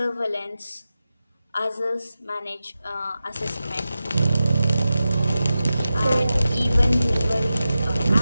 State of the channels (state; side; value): inverted; both; correlation -0.93